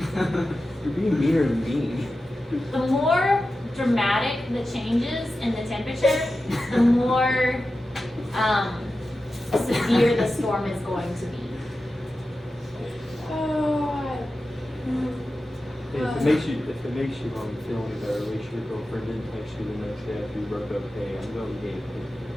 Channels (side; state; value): both; normal; correlation 0.93